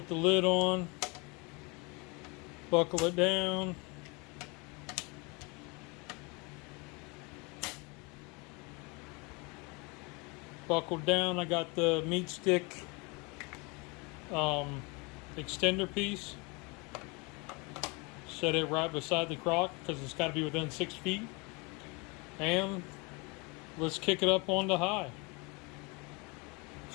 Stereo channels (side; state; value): right; quieter; 28.9 dB